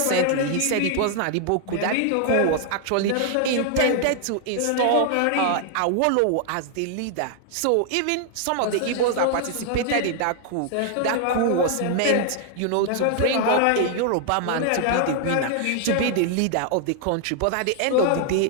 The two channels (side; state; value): both; different; correlation 0.00